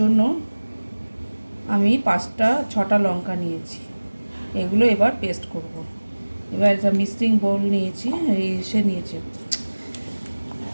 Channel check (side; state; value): both; inverted; correlation -1.00